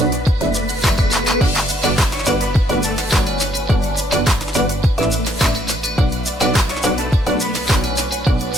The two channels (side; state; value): both; normal; correlation 0.70